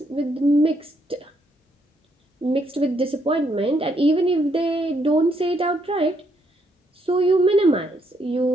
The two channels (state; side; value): normal; both; correlation 0.74